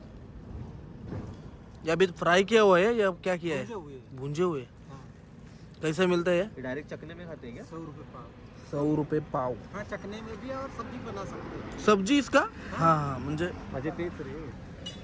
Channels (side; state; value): both; identical; correlation 1.00